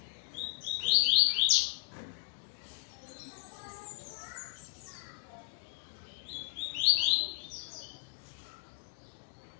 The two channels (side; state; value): right; silent; digital silence